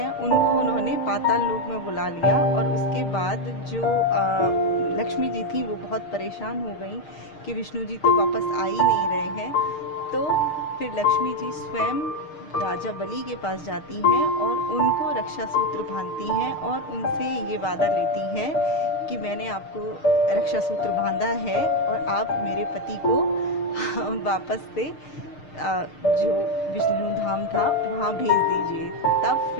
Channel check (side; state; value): right; late; 6.5 ms